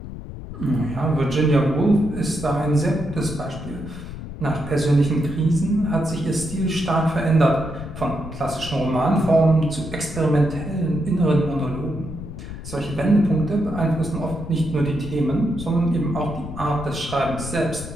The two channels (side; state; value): left; noise; rumble, 11 dB below the sound